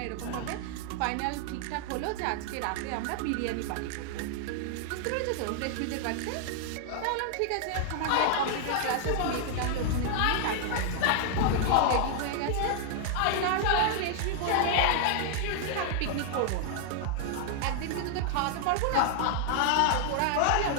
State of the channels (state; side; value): different; both; correlation 0.00